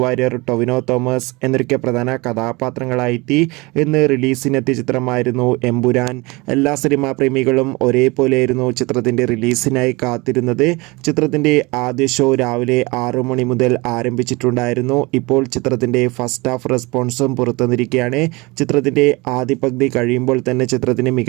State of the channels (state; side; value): quieter; left; 24.6 dB